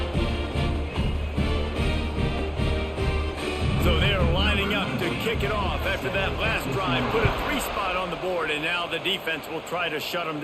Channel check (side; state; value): both; identical; correlation 1.00